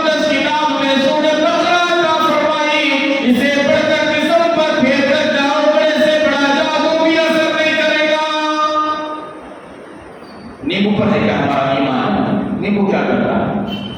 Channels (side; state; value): both; identical; correlation 1.00